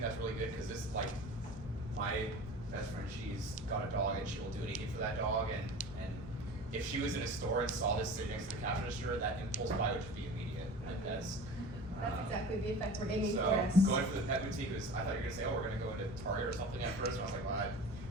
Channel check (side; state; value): both; normal; correlation 0.37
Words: that's really good because this is like my best friend, she's got a dog and she will do anything for that dog, and if she was in a store and saw this sitting next to the cash register, that impulse buy would just be immediate. Like That's exactly the effect we're aiming so for. going for the pet boutique was, I thought you were gonna say, oh, we're gonna go into Target or something at first, and I was like, well, I